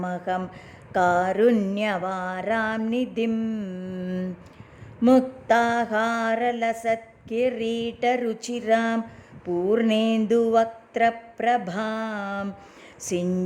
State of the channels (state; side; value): identical; both; correlation 1.00